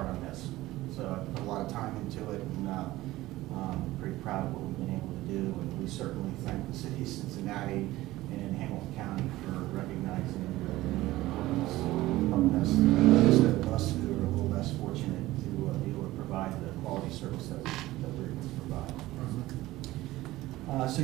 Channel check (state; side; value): quieter; left; 17.2 dB